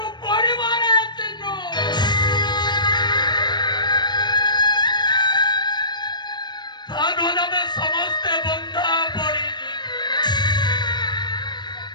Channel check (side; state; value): right; late; 0.21 ms